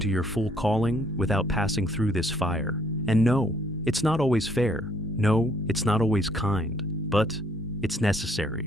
your full calling without passing through this fire. And no, it's not always fair. No, it's not always kind, but it's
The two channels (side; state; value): both; normal; correlation 0.65